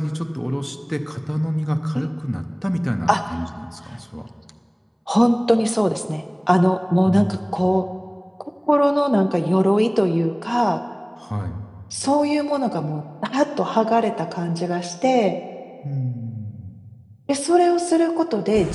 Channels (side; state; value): both; identical; correlation 1.00